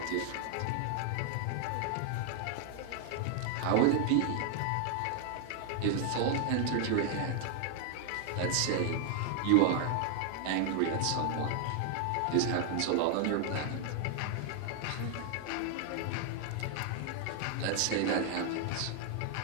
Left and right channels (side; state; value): both; different; correlation 0.00